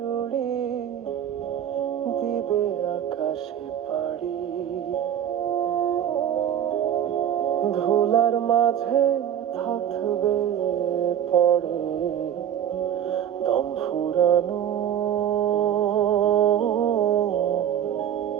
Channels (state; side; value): quieter; left; 9.8 dB